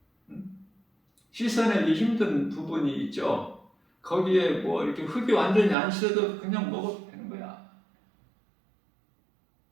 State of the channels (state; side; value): drops out; left; at 5.8 s